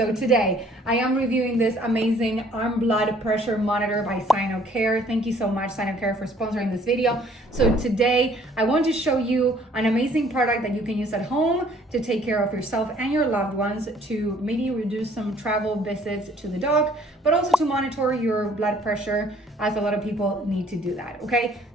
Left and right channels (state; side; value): normal; both; correlation 0.59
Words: today I am reviewing this amazing arm blood pressure monitor by SinoCare. Thank you so much, SinoCare, for sponsoring this video. So today I want to show you an amazing product that you can use at home to take care of yourself and your loved ones, to maybe reduce some travel visits to the doc, but also to monitor your blood pressure, as a lot of people need to do that. Okay,